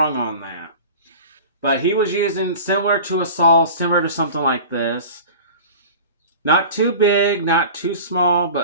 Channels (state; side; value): inverted; both; correlation -0.38